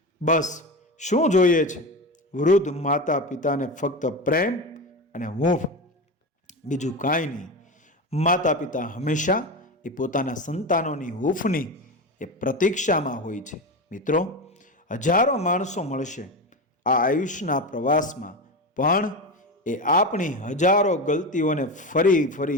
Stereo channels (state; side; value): normal; both; correlation 0.21